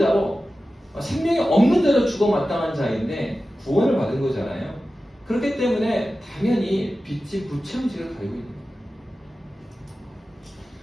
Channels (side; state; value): both; normal; correlation 0.94